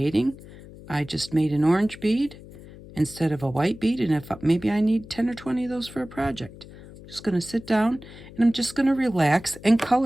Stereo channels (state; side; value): noise; left; hum, 18 dB below the sound